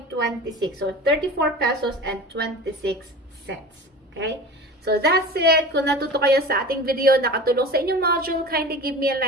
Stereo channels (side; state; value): both; normal; correlation 0.35